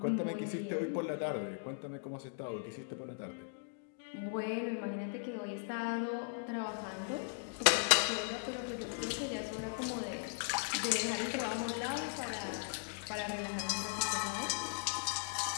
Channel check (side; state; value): right; silent; digital silence